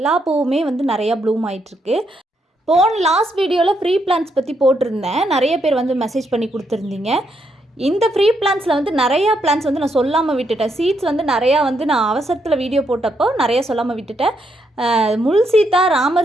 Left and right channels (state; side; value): normal; both; correlation 0.77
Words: பூவுமே வந்து நிறையா ப்ளூம் ஆகிட்டுருக்கு. லாஸ்ட் வீடியோவில் ஃப்ரீ பிளான்ஸ் பற்றி போட்டிருந்தேன். நிறைய பேர் வந்து மெசேஜ் பண்ணி கொடுத்துருந்தீங்க. இந்த ஃப்ரீ பிளான்ஸில் வந்து நிறையா பிளான்ஸ் வந்து நான் சொல்லாமல் விட்டுட்டேன். சீட்ஸ் வந்து நிறையா வந்து நான் அவசரத்தில் வீடியோ போட்டப்போ நிறையா சொல்லாமல் விட்டுட்டேன். முள் சீத்தா,